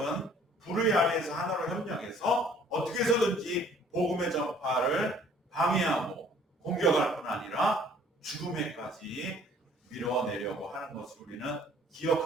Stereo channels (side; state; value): both; normal; correlation 0.56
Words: 불의 아래에서 하나로 협력해서 어떻게 해서든지 복음의 전파를 방해하고 공격할 뿐 아니라 죽음에까지 밀어내려고 하는 것을 우리는